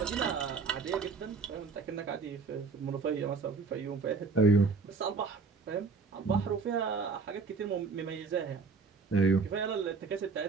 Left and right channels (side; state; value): left; quieter; 4.6 dB